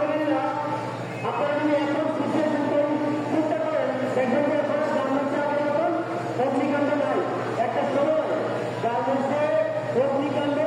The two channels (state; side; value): identical; both; correlation 1.00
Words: আপনারা যদি এখন সিচুয়েশন চিন্তা করেন, দেখবেন যে এখন গার্মেন্টসে এখন অগ্নিকাণ্ড নাই। একটা সময় গার্মেন্টসে